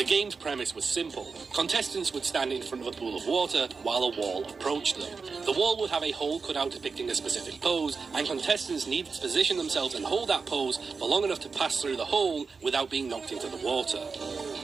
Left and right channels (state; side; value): quieter; left; 4.8 dB